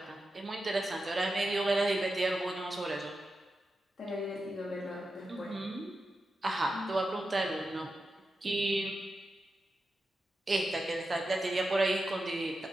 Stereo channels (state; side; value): normal; both; correlation 0.90